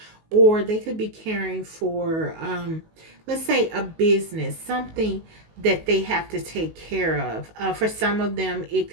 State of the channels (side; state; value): left; late; 19 ms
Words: or they could be caring for let's say a business, something that they have to take care of. For some of them, it